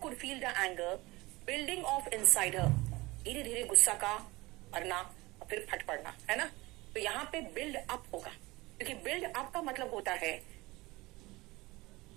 feel the anger building off inside her. धीरे धीरे गुस्सा का भरना और फिर फट पड़ना, है ना। तो यहाँ पे बिल्ड अप होगा, क्योंकि बिल्ड अप का मतलब होता है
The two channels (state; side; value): quieter; left; 21.5 dB